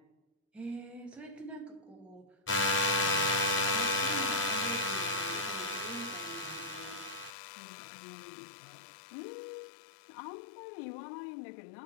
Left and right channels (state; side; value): drops out; right; at 7.3 s